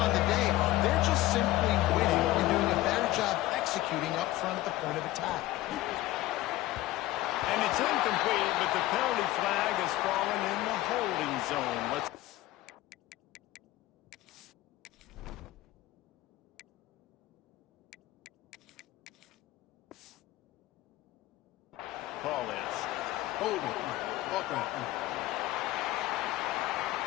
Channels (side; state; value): right; quieter; 16.5 dB